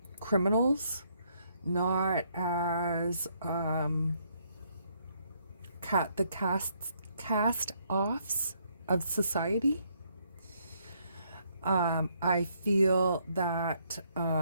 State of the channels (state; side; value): inverted; both; correlation -0.71